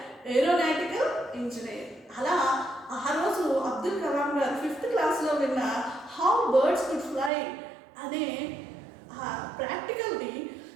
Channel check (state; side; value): drops out; left; at 7.3 s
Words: aeronautical engineer. అలా ఆ రోజు అబ్దుల్ కలాం గారు 5th క్లాస్లో విన్న how birds could fly అనే ప్రాక్టికల్ని